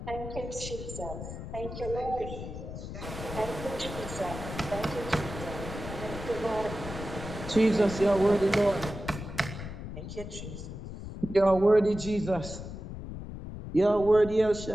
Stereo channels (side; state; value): left; noise; rumble, 9 dB below the sound